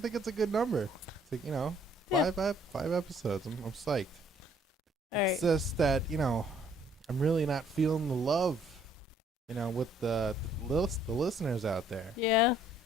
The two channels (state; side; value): normal; both; correlation 0.63